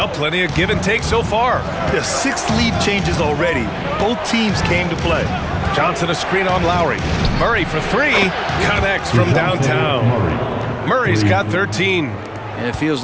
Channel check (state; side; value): identical; both; correlation 1.00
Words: plenty of give and take so far. There's 6 lead changes already. Both teams came to play. Johnson a screen on Lowry. Murray for 3. Connects from downtown. Murray's got 13. And it feels